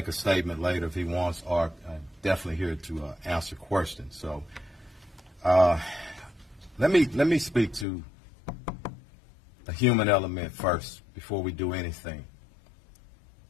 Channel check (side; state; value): right; drops out; at 7.9 s